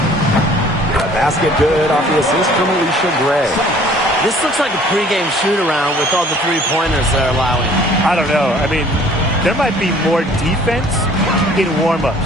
Basket good off the assist from Alicia Gray. This looks like a pregame shoot-around with all the three-pointers they're allowing. I don't know. I mean, there might be more defense in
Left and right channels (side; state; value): both; normal; correlation 0.54